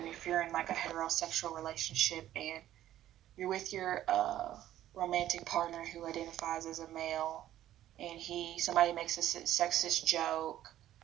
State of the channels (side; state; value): left; quieter; 12.7 dB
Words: if you're in like a heterosexual relationship and you're with your romantic partner who identifies as a male, and somebody makes a sexist joke,